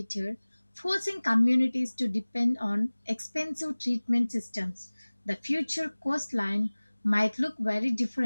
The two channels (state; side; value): inverted; both; correlation -1.00